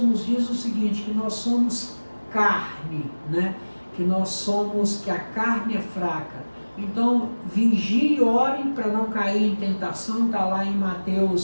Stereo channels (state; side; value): inverted; both; correlation -1.00